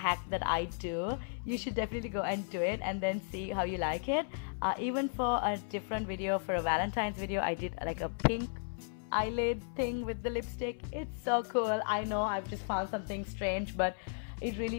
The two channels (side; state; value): right; silent; 55 dB below the other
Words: that I do, you should definitely go and do it and then see how you like it. Even for a different video, for a Valentine's video, I did like a pink eyelid thing with the lipstick. It's so cool. I know I've just found something strange, but it